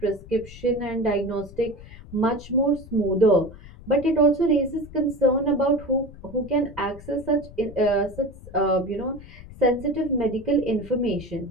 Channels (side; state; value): left; noise; rumble, 17 dB below the sound